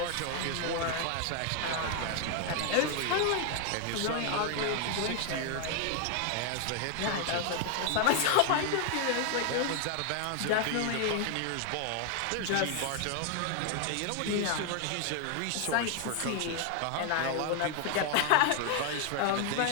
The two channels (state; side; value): different; both; correlation 0.00